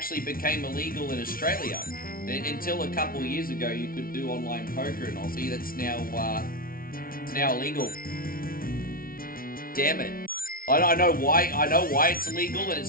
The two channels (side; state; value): right; late; 0.43 ms